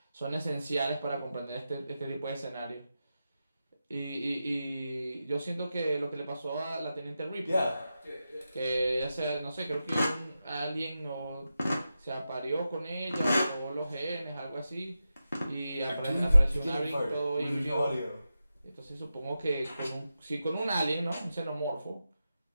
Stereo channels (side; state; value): both; inverted; correlation -0.90